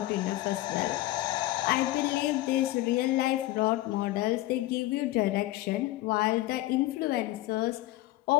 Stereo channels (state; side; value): quieter; right; 16.9 dB